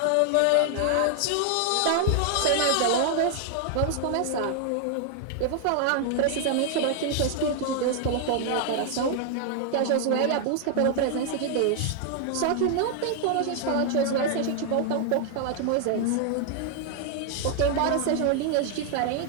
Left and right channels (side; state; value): both; different; correlation 0.00